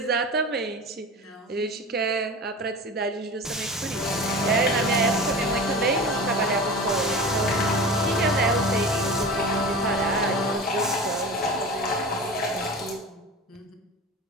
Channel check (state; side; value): normal; both; correlation 0.33